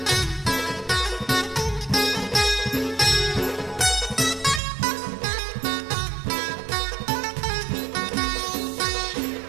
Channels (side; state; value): left; drops out; at 4.6 s